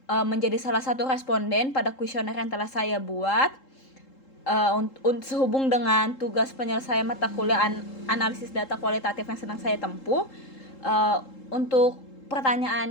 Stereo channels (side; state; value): right; late; 3.8 ms